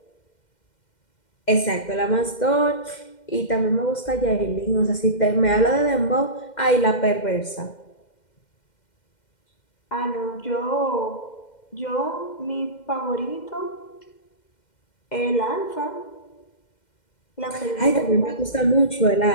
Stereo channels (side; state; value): right; late; 2.1 ms